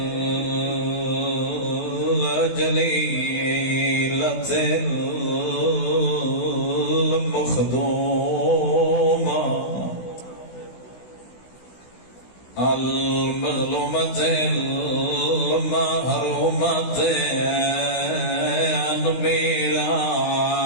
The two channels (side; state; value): right; late; 16 ms